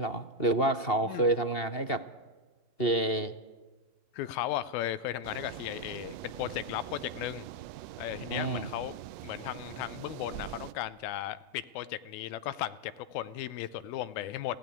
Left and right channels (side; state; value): right; late; 2.7 ms